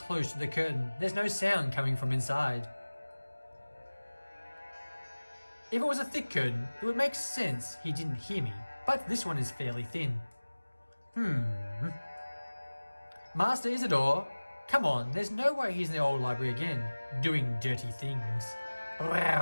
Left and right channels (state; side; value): inverted; both; correlation -1.00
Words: to the curtain. There's no sound coming from inside. If it was a thick curtain, it would make sense he didn't hear me, but this one is fairly thin. Master Isidore, come on, there's no way he's in the old library again, doing dirty things.